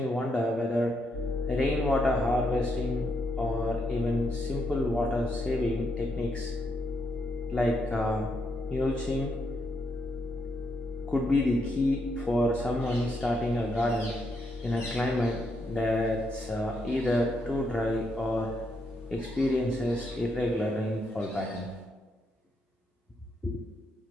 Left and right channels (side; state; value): both; normal; correlation 0.79